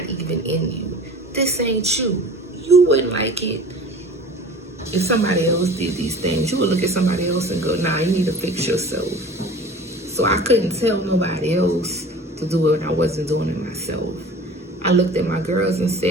even in you? This ain't you. You wouldn't like it if somebody else did these things. You would look at somebody else and go, nah, you need to fix yourself. So I couldn't tell nobody else to do it when I wasn't doing it myself. I looked at my girls and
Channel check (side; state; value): both; normal; correlation 0.42